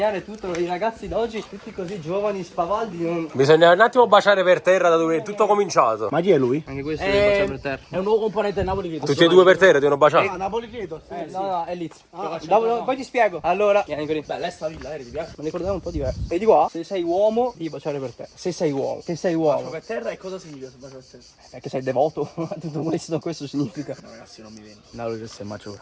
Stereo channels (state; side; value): identical; both; correlation 1.00